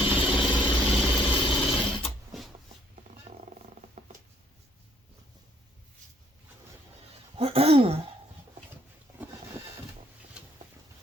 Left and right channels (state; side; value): normal; both; correlation 0.65